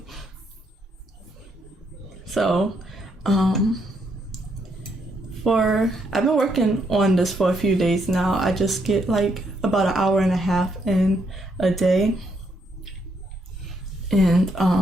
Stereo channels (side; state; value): both; normal; correlation 0.75